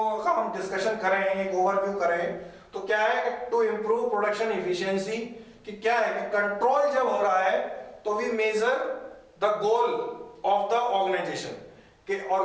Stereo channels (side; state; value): both; identical; correlation 1.00